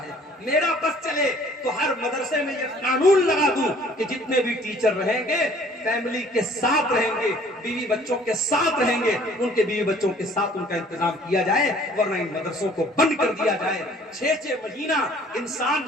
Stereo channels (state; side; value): normal; both; correlation 0.55